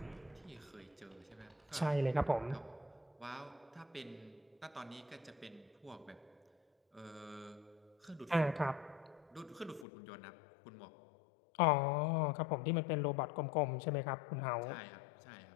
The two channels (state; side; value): drops out; right; at 9.9 s